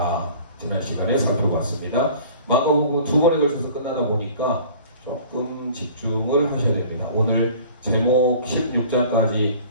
지난 시간에 살펴봤습니다. 마가복음 두 번에 걸쳐서 끝나다 보니까 조금 집중을 하셔야 됩니다. 오늘 제목 16장까지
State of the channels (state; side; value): inverted; both; correlation -0.47